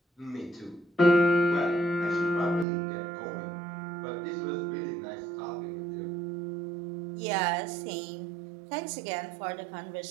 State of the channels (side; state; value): left; drops out; at 2.7 s